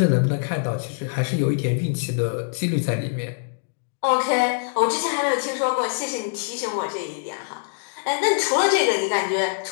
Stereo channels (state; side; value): silent; right; digital silence